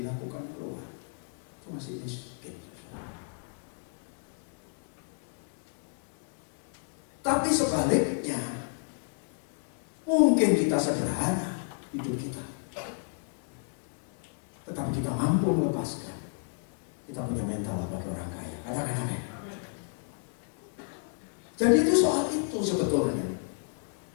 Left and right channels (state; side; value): silent; right; 57 dB below the other